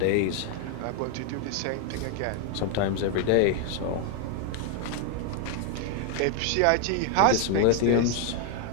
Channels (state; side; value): different; both; correlation 0.00